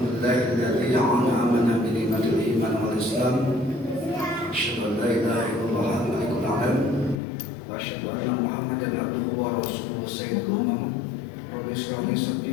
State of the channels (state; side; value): drops out; right; at 7.2 s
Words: an'amana bi ni'matil iman wal islam. Asyhadu an la ilaha illallah al-malikul a'lam wa asyhadu anna Muhammadan abduhu wa rasuluhu sayyidul umam. Rabbi shrah li